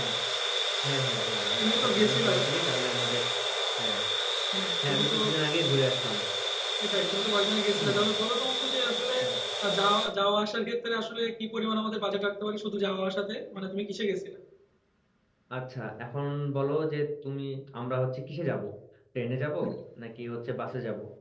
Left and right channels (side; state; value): both; identical; correlation 1.00